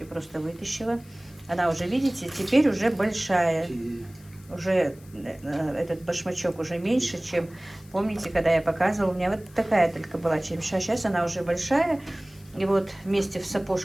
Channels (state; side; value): noise; left; hiss, 26 dB below the sound